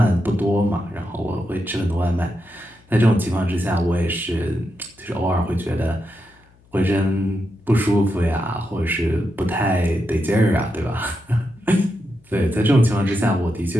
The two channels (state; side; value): noise; left; hum, 30 dB below the sound